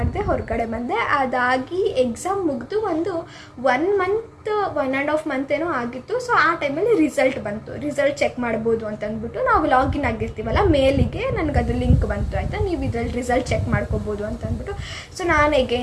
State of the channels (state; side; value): identical; both; correlation 1.00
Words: ಹೊರಗಡೆ ಬಂದೆ. ಅದಾಗಿ ಎಕ್ಸಾಮ್ ಮುಗಿದು ಒಂದು 1 ಮಂತ್ 1.5 ಮಂತ್ ಏನೋ ಆಗಿತ್ತು. ಸೊ ಆ ಟೈಮಲ್ಲಿ ರಿಸಲ್ಟ್ ಬಂತು. ರಿಸಲ್ಟ್ ಚೆಕ್ ಮಾಡ್ಬೋದು ಅಂತಂದ್ಬಿಟ್ಟು ನಾವು ಲಾಗಿನ್ ಆಗಿರ್ತೀವಲ್ಲ ಮೇಲಿಗೆ ನನಗೆ ಅದು ಲಿಂಕ್ ಬಂತು ಆಯಿತಾ, ನೀವು ಇದ್ರಲ್ಲಿ ರಿಸಲ್ಟ್ ಚೆಕ್ ಮಾಡ್ಕೋಬೋದು ಅಂತಂದ್ಬಿಟ್ಟು. ಸೊ ನಾನು